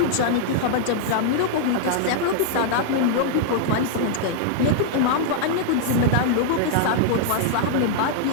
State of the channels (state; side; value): different; both; correlation -0.01